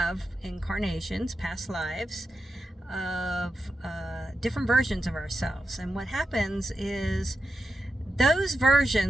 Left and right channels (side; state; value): both; normal; correlation 0.89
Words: incarnations, past lives, of different versions of ourselves. And what happens is those